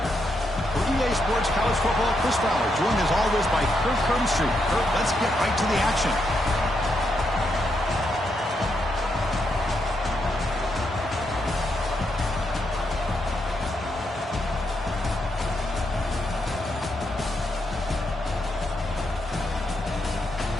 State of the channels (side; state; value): both; normal; correlation 0.80